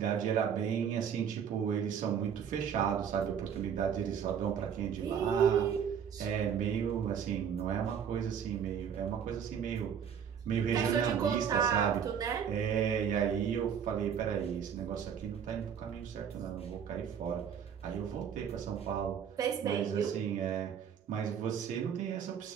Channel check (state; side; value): quieter; left; 7.9 dB